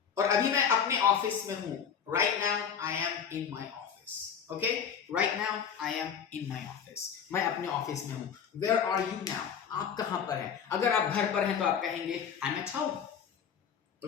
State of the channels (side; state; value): right; quieter; 7.5 dB